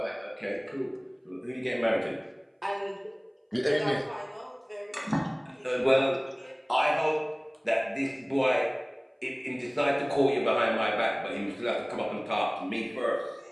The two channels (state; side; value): identical; both; correlation 1.00